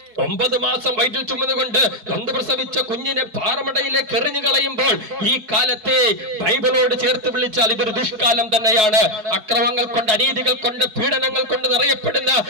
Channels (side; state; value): left; late; 4.7 ms